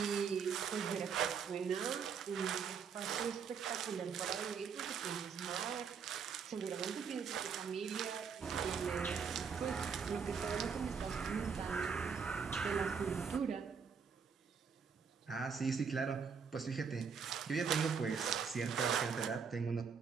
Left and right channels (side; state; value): left; quieter; 6.2 dB